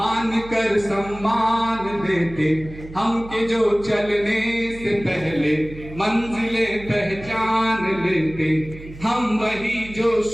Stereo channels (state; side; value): noise; right; hum, 16 dB below the sound